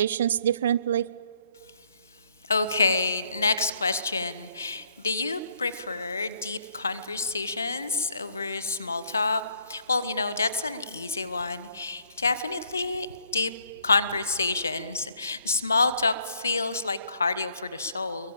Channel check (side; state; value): both; inverted; correlation -0.67